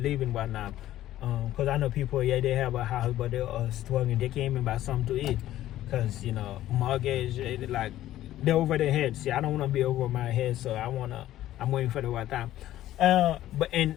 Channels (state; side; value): quieter; right; 13.7 dB